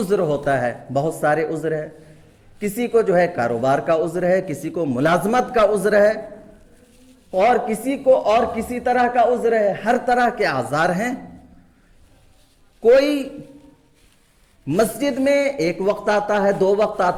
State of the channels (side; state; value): both; identical; correlation 1.00